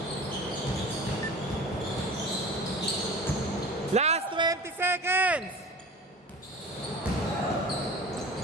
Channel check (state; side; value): normal; both; correlation 0.38